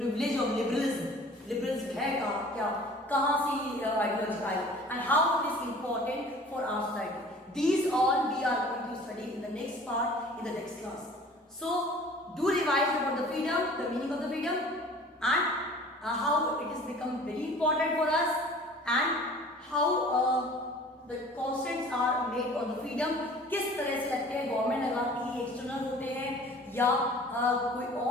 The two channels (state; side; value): normal; both; correlation 0.47